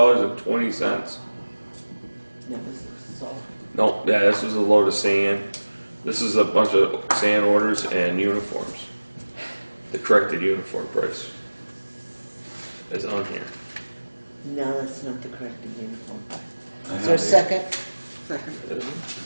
That was all. No, yeah, this is a load of sand. This is a bunch of sand orders and uniforms. The corrected uniform price is on here. No, that's not the correct uniform. I Is there a have second? Second.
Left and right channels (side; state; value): both; inverted; correlation -1.00